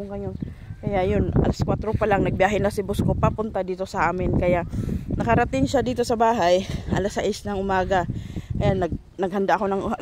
ngayon. Kaya yun, alas 4 pa lang, nagbiyahe na si boss ko papunta dito sa amin. Kaya nakarating siya dito sa bahay, alas 6 ng umaga. Ayan, naghanda ako ng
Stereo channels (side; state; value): both; identical; correlation 1.00